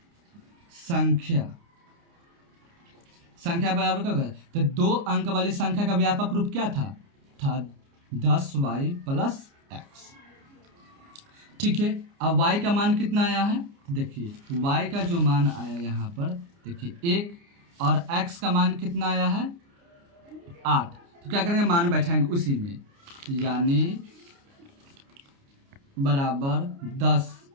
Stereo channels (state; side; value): late; left; 29 ms